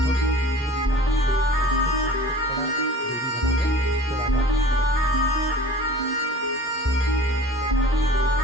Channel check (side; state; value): both; normal; correlation 0.43